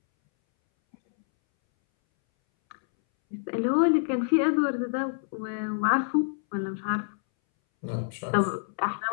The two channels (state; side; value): silent; right; 60 dB below the other